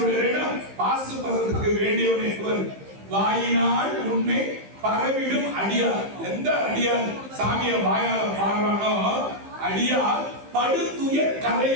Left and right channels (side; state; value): left; late; 15 ms